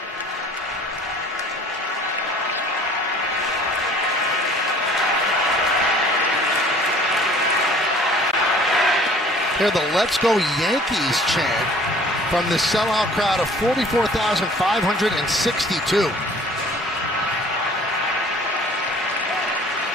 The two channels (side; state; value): both; normal; correlation 0.51